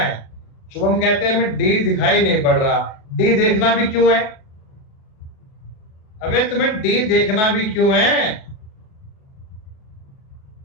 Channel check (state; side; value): late; right; 37 ms